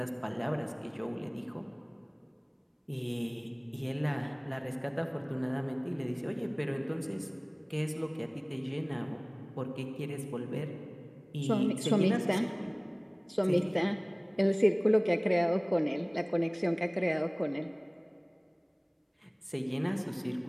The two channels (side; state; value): both; identical; correlation 1.00